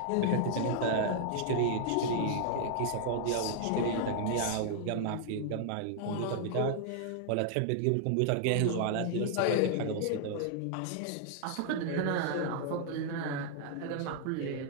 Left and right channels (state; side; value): different; both; correlation -0.01